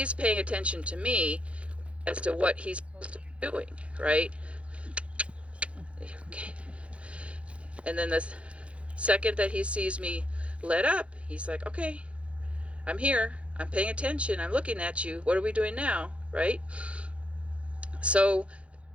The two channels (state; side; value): late; left; 0.062 ms